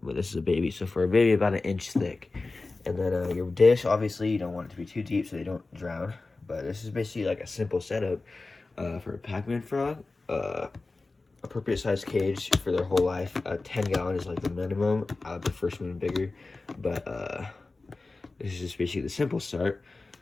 but this is a baby, so for a baby about 1 inch thick. And then your dish, obviously you don't want it to be too deep so they don't drown, but this is basically like a simple setup for a Pac-Man frog. Appropriate size cage for their whole life. 10-gallon is like the minimum. I would prefer something bigger, but this is just basically the simple start.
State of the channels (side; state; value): right; quieter; 3.5 dB